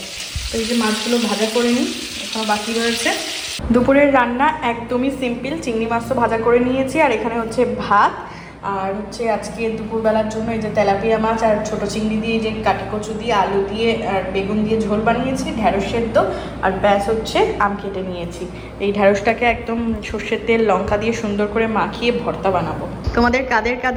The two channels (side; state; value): both; identical; correlation 1.00